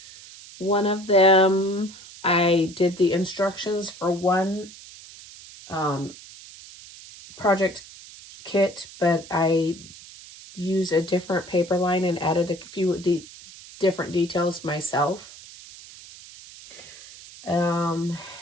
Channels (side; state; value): right; noise; hiss, 18 dB below the sound